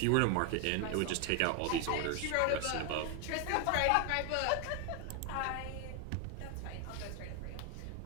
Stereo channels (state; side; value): different; both; correlation 0.01